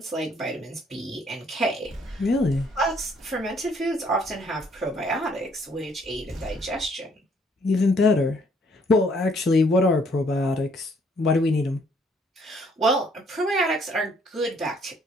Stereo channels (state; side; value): normal; both; correlation 0.65